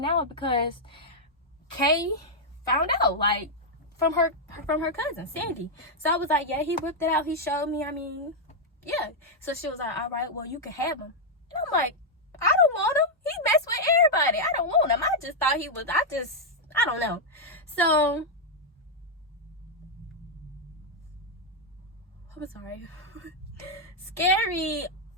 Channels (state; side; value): normal; both; correlation -0.02